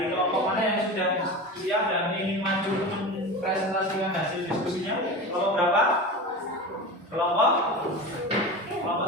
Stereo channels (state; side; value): normal; both; correlation 0.29